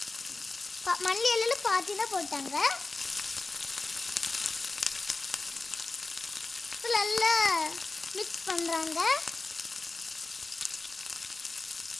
மல்லி இலையில் பாத்தி தான் போட்டாங்க. நல்லா மிக்ஸ் பண்ணுறாங்க.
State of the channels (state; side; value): quieter; right; 3.5 dB